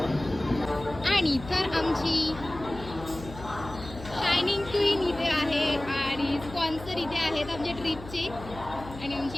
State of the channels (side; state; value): left; noise; hum, 14 dB below the sound